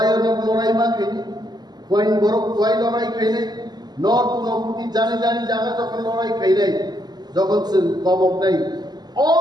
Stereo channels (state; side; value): late; left; 0.20 ms